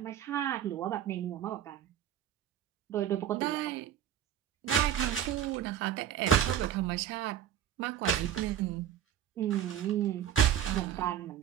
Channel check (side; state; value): left; quieter; 10.2 dB